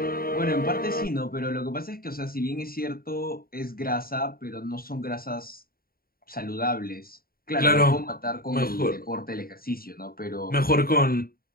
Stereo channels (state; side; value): late; right; 0.43 ms